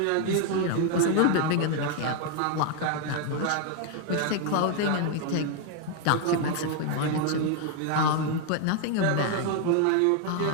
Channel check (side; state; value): both; different; correlation 0.01